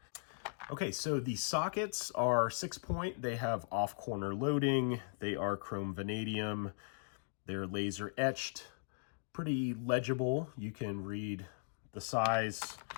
Okay, so the sockets are 6-point. They have off-corner loading. They are chrome vanadium. They're laser etched. Pretty legible. You can read the size.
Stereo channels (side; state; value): right; silent; digital silence